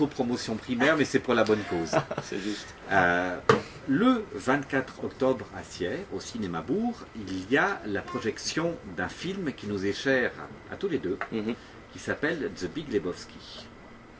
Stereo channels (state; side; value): identical; both; correlation 1.00